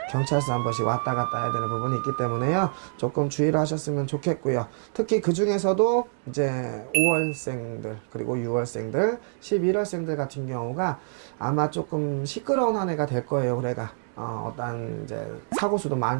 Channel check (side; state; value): left; silent; digital silence